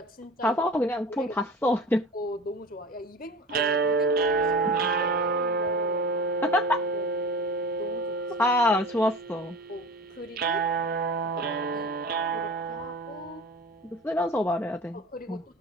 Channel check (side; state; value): both; normal; correlation 0.37